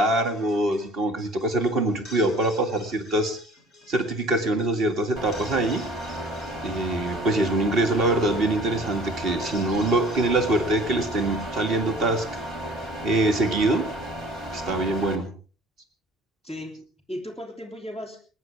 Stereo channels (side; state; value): both; normal; correlation 0.49